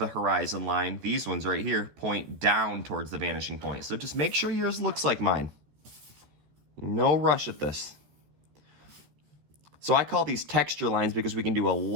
horizon line, these ones right here, point down towards the vanishing point. So just make sure yours looks like mine. No rush at this. So I call these texture lines because we can do a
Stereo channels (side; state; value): left; late; 14 ms